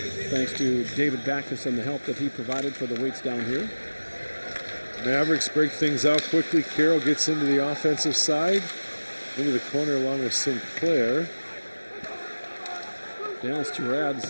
thanks to David Backus and the help that he provided for the weights down here. Mavericks break things out quickly. Carroll gets into the offensive side, into the corner along with Sinclair. Dallas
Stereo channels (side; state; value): both; inverted; correlation -1.00